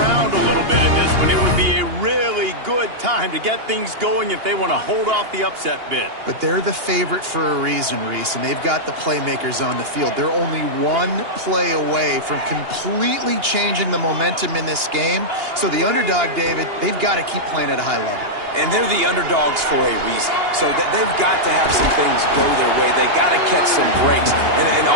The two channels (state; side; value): late; left; 2.8 ms